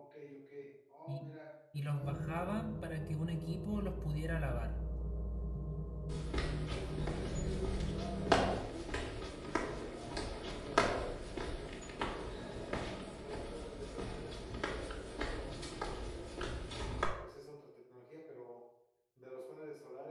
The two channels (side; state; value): both; identical; correlation 1.00